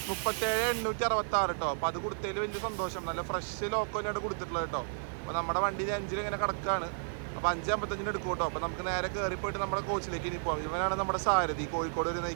37,866 കേട്ടോ. അപ്പോൾ അത് കൊടുത്തതിൽ വലിയ സന്തോഷം. നല്ല ഫ്രഷ് ലോക്കോ തന്നെയാണ് കൊടുത്തിട്ടുള്ളത് കേട്ടോ. അപ്പോൾ നമ്മുടെ വണ്ടിയിൽ 5 ഇങ്ങനെ കിടക്കുകയാണ്. അപ്പോൾ 5:55 എടുക്കും കേട്ടോ. അപ്പോൾ നമുക്ക് നേരെ കയറി പോയിട്ട് നമ്മുടെ കോച്ചിലേക്ക് ഇനി പോകാം. ഇവനാണ് നമ്മുടെ സാരഥി, കോഴിക്കോട് വരെ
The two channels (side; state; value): left; silent; digital silence